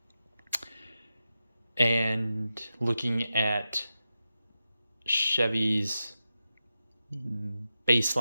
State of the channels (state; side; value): inverted; both; correlation -0.91